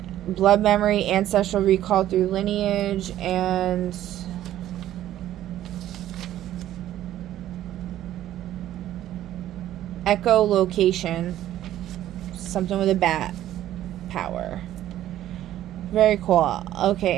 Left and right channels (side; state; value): left; quieter; 12.8 dB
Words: blood memory, ancestral recall through lineage, and echolocation. Something with a bat power. Very cool.